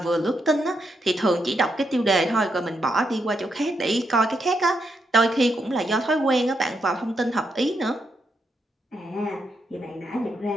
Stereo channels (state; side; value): normal; both; correlation 0.81